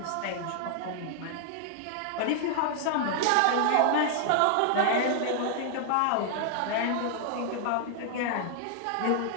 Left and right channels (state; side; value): different; both; correlation 0.00